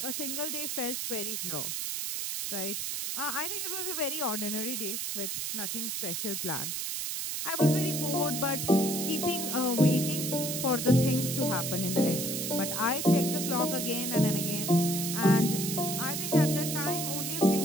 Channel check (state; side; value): noise; right; hiss, 2 dB below the sound